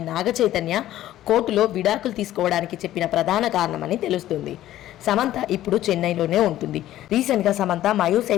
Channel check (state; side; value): quieter; right; 13.6 dB